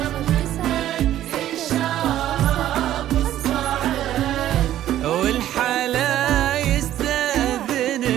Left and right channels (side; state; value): left; quieter; 12.6 dB